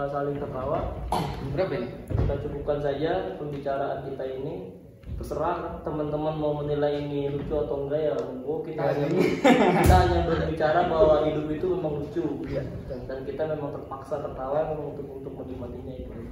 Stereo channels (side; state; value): both; identical; correlation 1.00